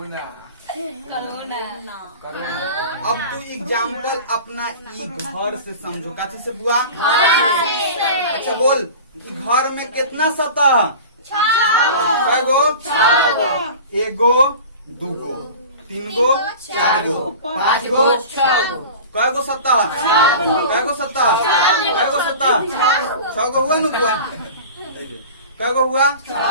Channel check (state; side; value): inverted; both; correlation -0.36